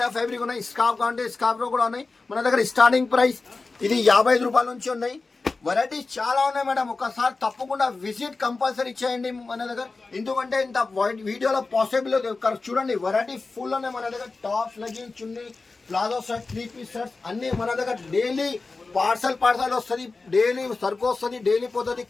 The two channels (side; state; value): right; quieter; 3.8 dB